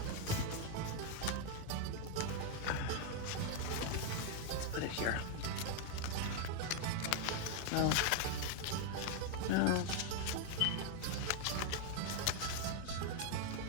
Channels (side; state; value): both; different; correlation 0.01